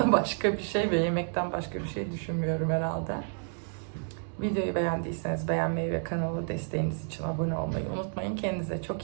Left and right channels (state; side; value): silent; left; 58 dB below the other